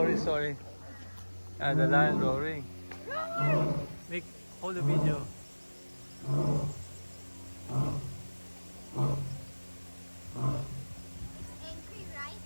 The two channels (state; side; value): inverted; both; correlation -1.00